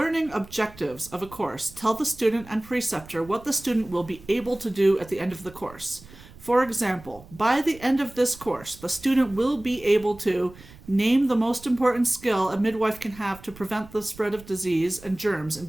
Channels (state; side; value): noise; right; rumble, 20 dB below the sound